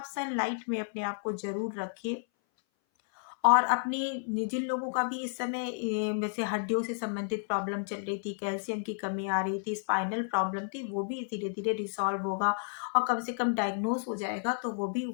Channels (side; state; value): right; silent; 57 dB below the other